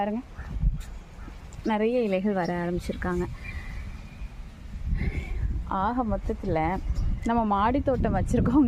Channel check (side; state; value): both; identical; correlation 1.00